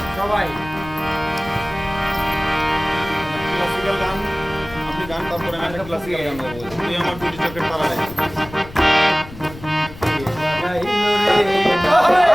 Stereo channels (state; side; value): noise; left; rumble, 16 dB below the sound